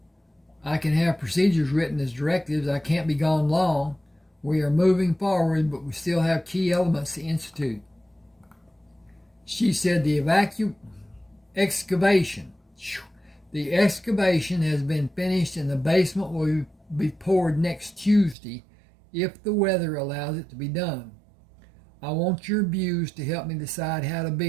I can have procedures written as directives. I can't be gone long. We are moving forward, but we still have key elements to institute. She said the excavation. The excavation has been finished and the basement will be poured next Tuesday if the weather allows it to be done. I want your views to help me decide how to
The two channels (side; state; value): left; drops out; at 18.4 s